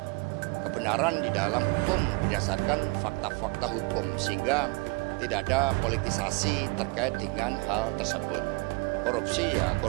kebenaran di dalam hukum berdasarkan fakta-fakta hukum, sehingga tidak ada politisasi terkait dengan hal tersebut. Korupsi ya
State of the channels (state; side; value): quieter; left; 28.0 dB